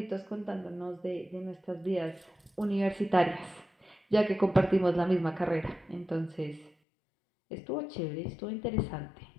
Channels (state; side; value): drops out; right; at 6.7 s